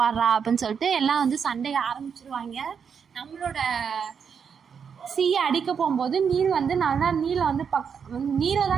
பாடுறா அப்படின்னு சொல்லிட்டு எல்லாம் வந்து சண்டையை ஆரம்பிச்சிருவாங்க. நம்மளோட சீயை அடிக்க போகும்போது நீல் வந்து நல்லா நீலை வந்து நீரை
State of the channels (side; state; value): left; quieter; 6.8 dB